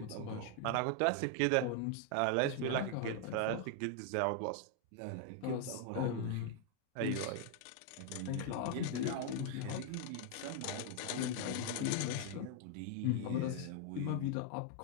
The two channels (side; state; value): both; different; correlation 0.00